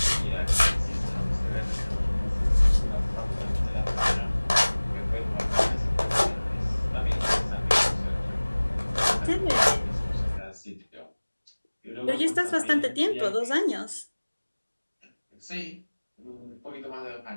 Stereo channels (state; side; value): inverted; both; correlation -1.00